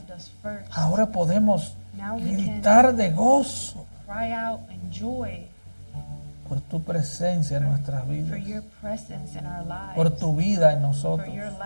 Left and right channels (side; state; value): both; inverted; correlation -1.00